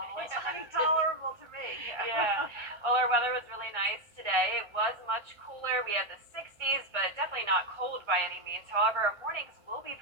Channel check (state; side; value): late; left; 1.4 ms